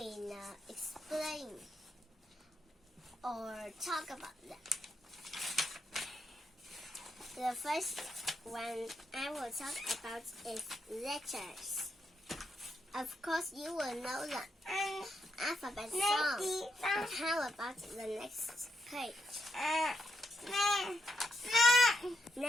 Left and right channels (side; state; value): both; normal; correlation 0.81